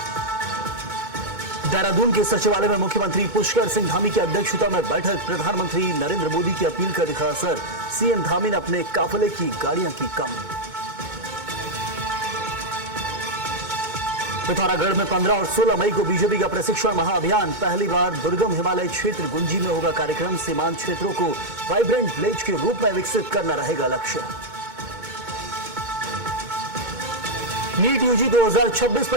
देहरादून के सचिवालय में मुख्यमंत्री पुष्कर सिंह धामी की अध्यक्षता में बैठक, प्रधानमंत्री नरेंद्र मोदी की अपील का दिखा असर, सीएम धामी ने अपने काफिले की गाड़ियां की कम। पिथौरागढ़ में 15 और 16 मई को बीजेपी का प्रशिक्षण महाअभियान, पहली बार दुर्गम हिमालय क्षेत्र गुंजी में होगा कार्यक्रम। सीमांत क्षेत्रों को वाइब्रेंट विलेज के रूप में विकसित करना रहेगा लक्ष्य। नीट यूजी 2026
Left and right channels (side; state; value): left; late; 2.2 ms